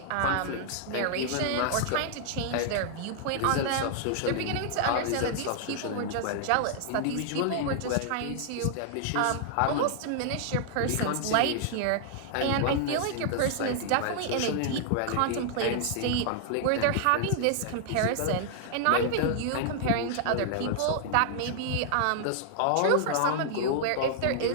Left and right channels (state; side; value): different; both; correlation -0.01